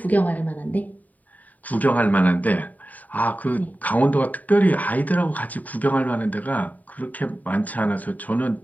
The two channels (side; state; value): right; late; 0.075 ms